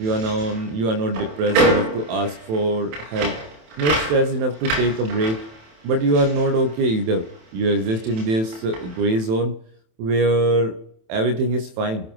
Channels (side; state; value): left; late; 27 ms